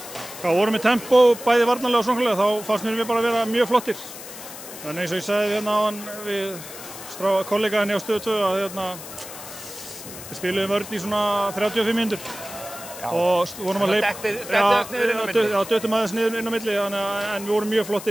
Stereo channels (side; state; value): left; noise; hiss, 13 dB below the sound